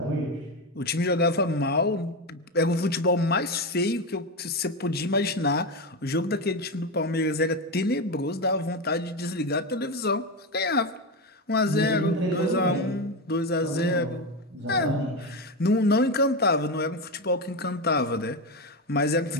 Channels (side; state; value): both; normal; correlation 0.15